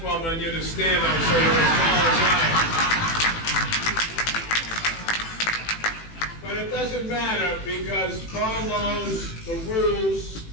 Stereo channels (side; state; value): right; late; 18 ms